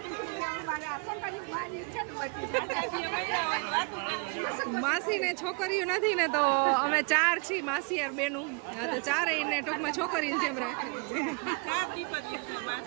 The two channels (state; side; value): quieter; left; 33.5 dB